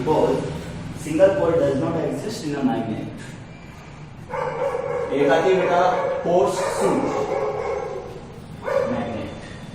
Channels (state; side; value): identical; both; correlation 1.00